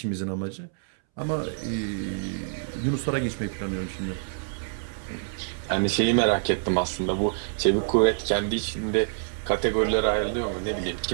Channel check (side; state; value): left; silent; 60 dB below the other